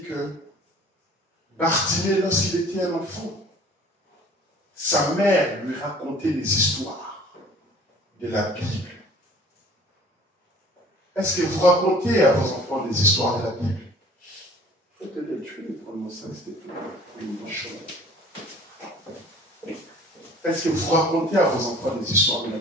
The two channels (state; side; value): normal; both; correlation 0.49